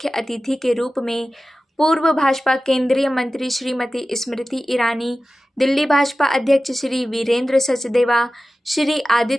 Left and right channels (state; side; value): normal; both; correlation 0.95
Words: अतिथि के रूप में पूर्व भाजपा केंद्रीय मंत्री श्रीमती स्मृति ईरानी, दिल्ली भाजपा अध्यक्ष श्री वीरेंद्र सचदेवा, श्री